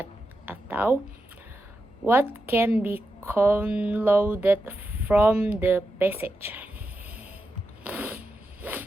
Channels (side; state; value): both; normal; correlation 0.88